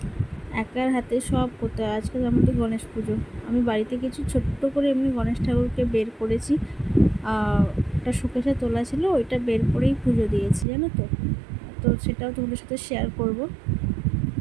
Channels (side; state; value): left; drops out; at 10.7 s